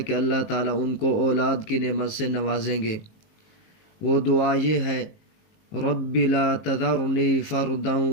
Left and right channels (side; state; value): right; late; 19 ms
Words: کہ اللہ تعالیٰ ان کو اولاد کی نعمت سے نوازیں گے۔ وہ دعا یہ ہے: رب لا تذرنی فردا